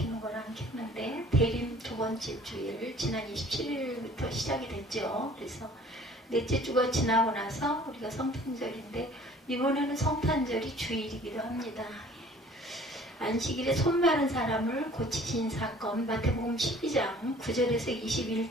건 안 켰는데 대림 2번째 주일 지난 27일부터 시작이 됐죠. 그래서 넷째 주가 지나고 나서 우리가 성탄절인데 이번에는 성탄절이 주일이기도 합니다. 안식일에 손 마른 사람을 고치신 사건 마태복음 12장 9절에서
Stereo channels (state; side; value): normal; both; correlation 0.51